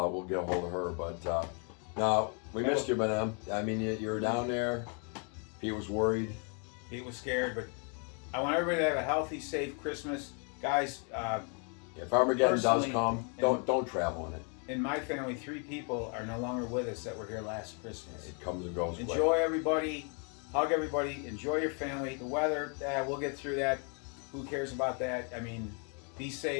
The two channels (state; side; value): quieter; right; 39.2 dB